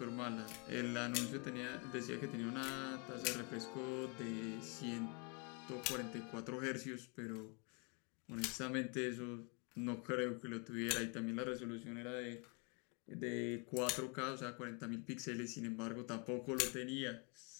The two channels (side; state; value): right; quieter; 34.5 dB